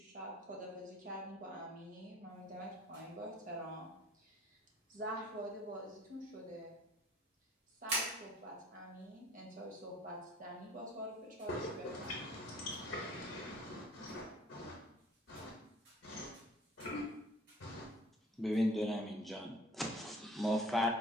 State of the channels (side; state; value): both; normal; correlation 0.51